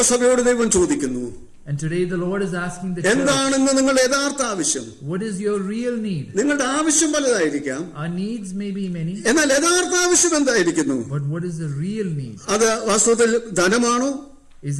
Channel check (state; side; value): identical; both; correlation 1.00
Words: ദൈവം ചോദിക്കുന്നു, and today the Lord is asking the church, എന്താണെന്ന് നിങ്ങളുടെ യഥാർത്ഥ ആവശ്യം? What is your real need? നിങ്ങളുടെ ആവശ്യം പലതായിരിക്കാം. Our needs may be many. എന്നാൽ യഥാർത്ഥ ആവശ്യം എന്തായിരിക്കുന്നു? But what is the real need? അത് വാസ്തവത്തിൽ ധനമാണോ? Is